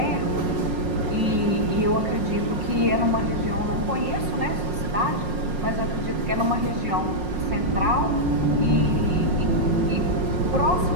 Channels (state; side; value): late; left; 5.5 ms